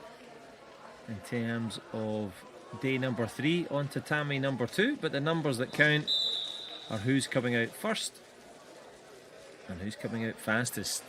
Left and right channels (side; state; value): both; identical; correlation 1.00